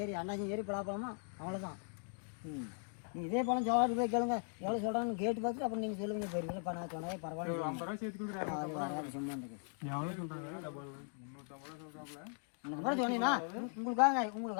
அண்ணாச்சி ஏறி பலாப்பழமா அவ்வளோதான். நீங்கள் இதே பழம் சோழாட்டு போய் கேளுங்க, எவ்வளோ சொல்கிறாங்கன்னு கேட்டு பார்த்துட்டு அப்புறம் நீங்கள் சொல்லுவீங்க. போயிருங்க இப்போ நான் சொன்னாலே பரவாயில்ல. அது வராது சும்மா இருந்துக்கு. அப்புறம் சொன்னீங்கன்னா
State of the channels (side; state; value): right; silent; 52 dB below the other